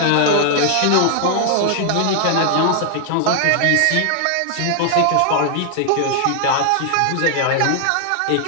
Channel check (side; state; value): both; different; correlation 0.00